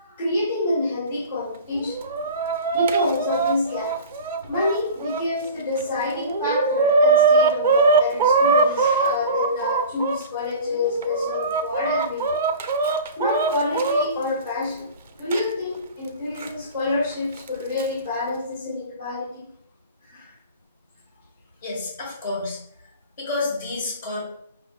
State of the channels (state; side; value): inverted; both; correlation -0.38